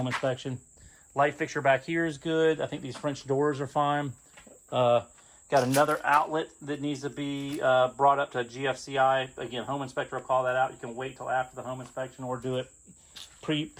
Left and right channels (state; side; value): identical; both; correlation 1.00